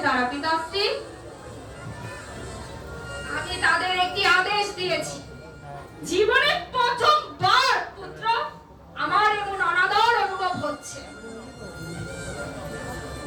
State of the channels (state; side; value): identical; both; correlation 1.00